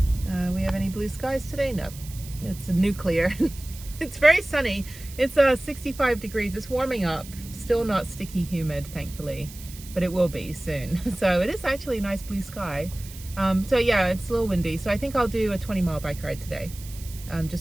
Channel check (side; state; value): right; noise; hiss, 17 dB below the sound